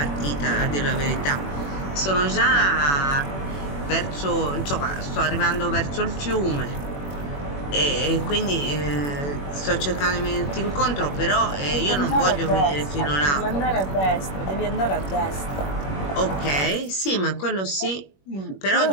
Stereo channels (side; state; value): right; late; 21 ms